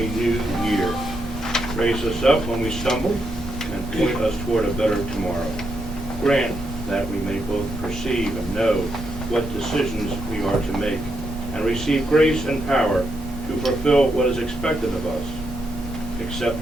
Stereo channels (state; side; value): normal; both; correlation 0.81